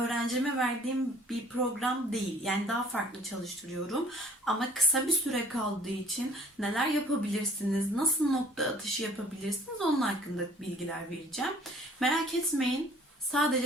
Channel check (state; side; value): normal; both; correlation 0.55